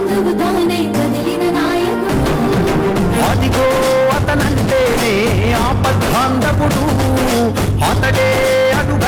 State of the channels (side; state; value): both; identical; correlation 1.00